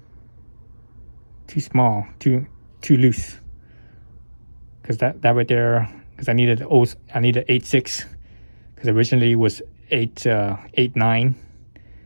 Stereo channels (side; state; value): both; inverted; correlation -1.00